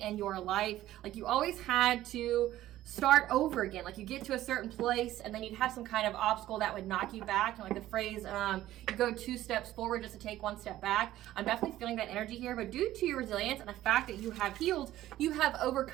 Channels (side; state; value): left; quieter; 14.3 dB